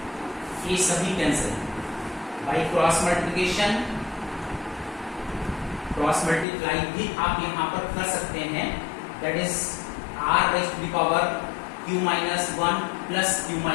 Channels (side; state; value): right; drops out; at 6.5 s